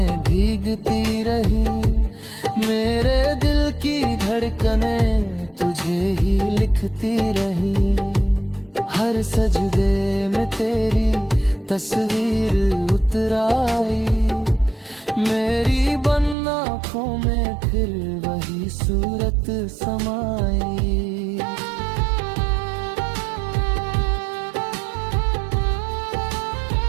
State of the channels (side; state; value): left; drops out; at 16.4 s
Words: भीगती रही, मेरे दिल की धड़कनें तुझे ही लिखती रही। हर सजदे में तेरी तस्वीर उतराई, मेरी बंद आँखों में फिर वही सूरत समाई।